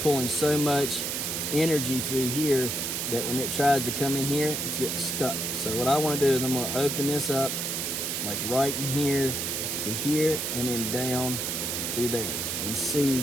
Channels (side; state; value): right; noise; hiss, 1 dB below the sound